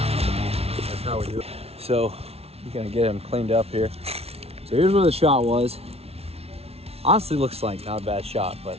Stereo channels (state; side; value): late; left; 0.30 ms